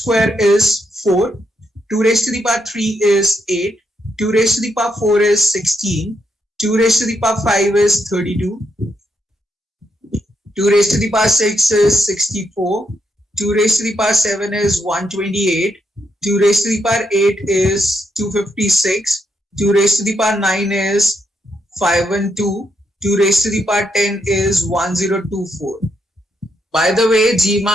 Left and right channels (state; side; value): normal; both; correlation 0.79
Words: is 4, 2 raised to the power 3 is 8, 2 raised to the power 4 is 16, 2 raised to the power 5 is 32, 2 raised to the power 6 is 64, 2 raised to the power 7 is 128, 2 raised to the power 8 is 256, 2 raised to the power 9 is 512, 2 raised to the power 10 is 1024. By the way,